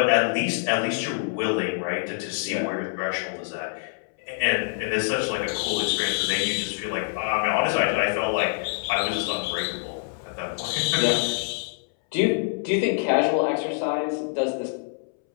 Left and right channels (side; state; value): right; silent; 61 dB below the other